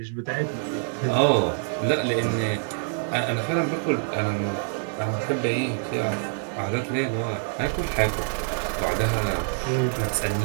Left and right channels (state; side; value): silent; left; digital silence